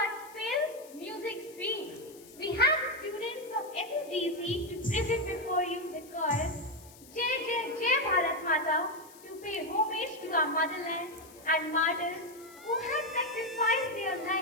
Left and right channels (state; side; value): noise; left; hiss, 22 dB below the sound